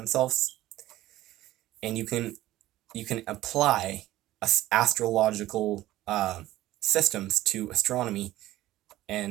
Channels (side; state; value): left; quieter; 15.5 dB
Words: And you can apply astrological systems to astronomy,